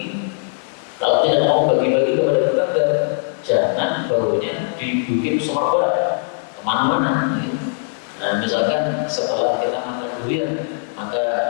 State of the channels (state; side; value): silent; right; 66 dB below the other